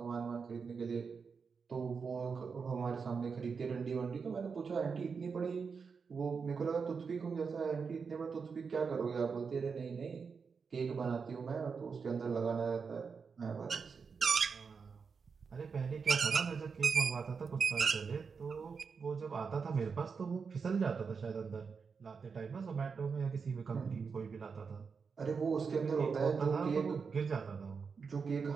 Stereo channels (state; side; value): quieter; left; 5.5 dB